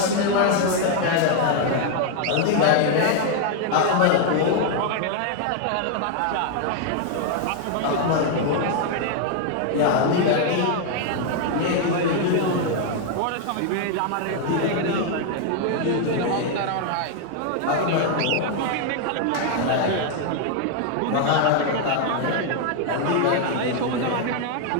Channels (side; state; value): both; different; correlation 0.00